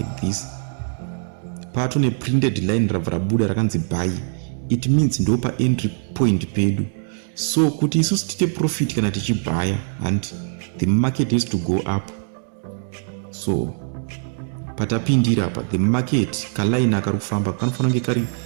this, patone printed line rabva rabuda rakanzi buy, it means ndo pa entry point pedu. So kuti isusu tite profit kana tichibaya, and the market has to go up. So patapindira apa, the market kaline akari kufamba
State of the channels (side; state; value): left; silent; 64 dB below the other